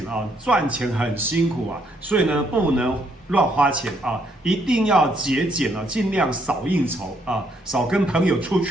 啊，赚钱很辛苦啊，所以呢不能乱花钱啊，一定要节俭啊，尽量少应酬啊，少跟朋友出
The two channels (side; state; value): both; normal; correlation 0.71